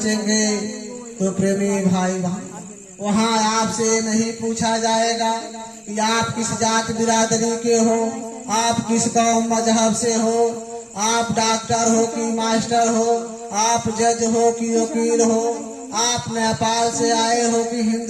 तो प्रेमी भाई भाई, वहाँ आपसे नहीं पूछा जाएगा कि आप किस जात बिरादरी के हो, आप किस कौम मजहब से हो, आप डॉक्टर हो कि मास्टर हो, आप जज हो कि वकील हो, आप नेपाल से आए हो कि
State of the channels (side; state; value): both; identical; correlation 1.00